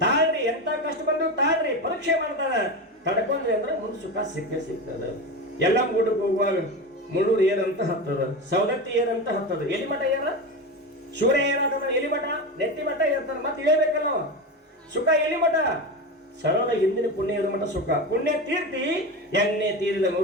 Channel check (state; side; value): normal; both; correlation 0.21